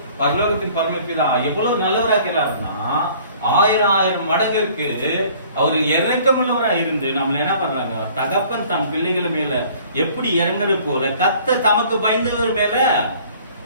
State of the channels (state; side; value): inverted; both; correlation -0.53